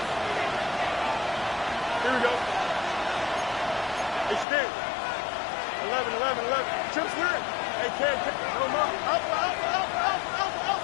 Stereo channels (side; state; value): right; drops out; at 4.5 s